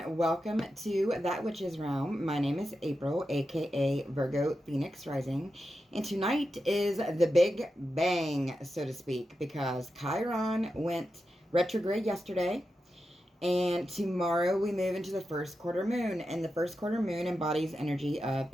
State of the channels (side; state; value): both; normal; correlation 0.90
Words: welcome to That Witch's Realm. My name is April, aka Virgo Phoenix Rising, and tonight is the big bang, so to speak, because Chiron went retrograde yesterday, and tomorrow we move into the first quarter moon, and the first quarter moon embodies energy of